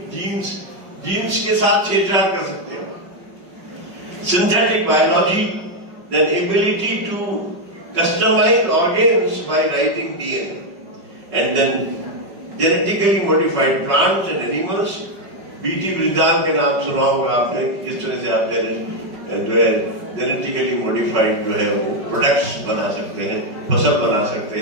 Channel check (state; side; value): late; left; 5.4 ms